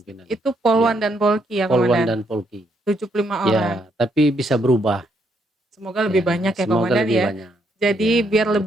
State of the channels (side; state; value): both; normal; correlation 0.74